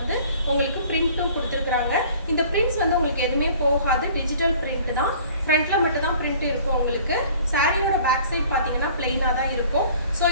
உங்களுக்கு பிரிண்ட்டும் கொடுத்துருக்குறாங்க. இந்த பிரிண்ட்ஸ் வந்து உங்களுக்கு எதுவுமே போகாது, டிஜிட்டல் பிரிண்ட் தான். ஃப்ரண்ட்டில் மட்டும் தான் பிரிண்ட் இருக்கும் உங்களுக்கு. சாரியோட பேக் சைட் பார்த்தீங்கன்னா பிளெயினாக தான் இருக்கும். ஸோ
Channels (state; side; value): inverted; both; correlation -0.50